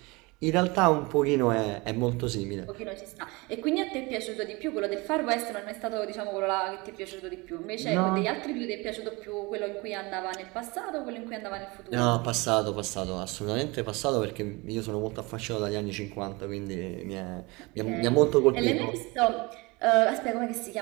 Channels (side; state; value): left; quieter; 25.1 dB